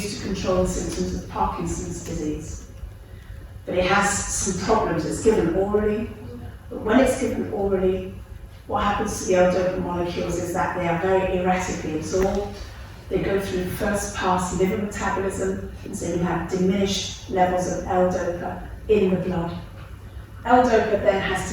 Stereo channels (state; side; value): identical; both; correlation 1.00